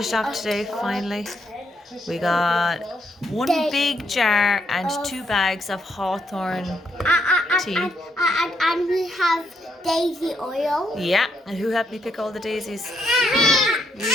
off today, finally. We got one big jar and 2 bags of hawthorn tea. And we have daisy oil. Yeah, and who helped me pick all the daisies? And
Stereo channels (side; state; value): both; normal; correlation 0.76